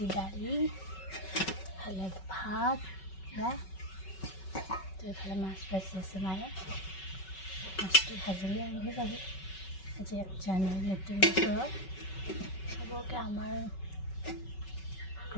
দালি ভালে ভাত এইফালে মাছ ভাজি আছে মায়ে মাছটো ভাজিলে আনিব যাব আজি 1 জানুৱাৰী নতুন বছৰত চবকে আমাৰ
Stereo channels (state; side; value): late; right; 5.3 ms